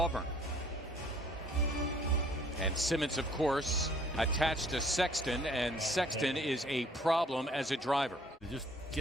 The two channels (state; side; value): normal; both; correlation 0.58